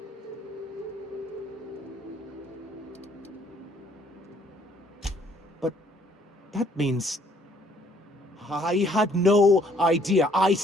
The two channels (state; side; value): normal; both; correlation 0.63